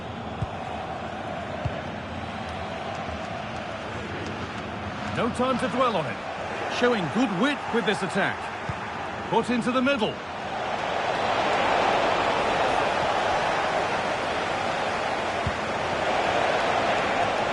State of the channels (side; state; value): both; identical; correlation 1.00